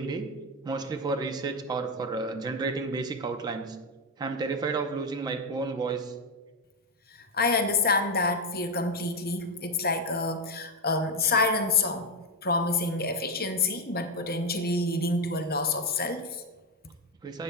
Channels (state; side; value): normal; both; correlation 0.08